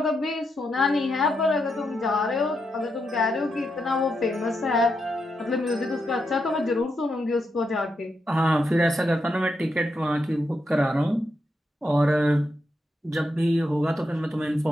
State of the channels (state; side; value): normal; both; correlation 0.83